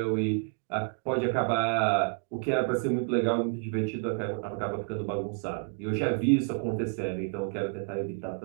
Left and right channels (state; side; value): quieter; left; 39.5 dB